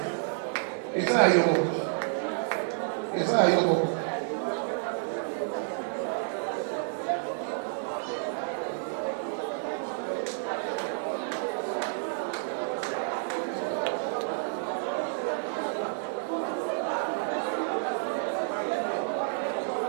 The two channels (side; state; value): left; silent; digital silence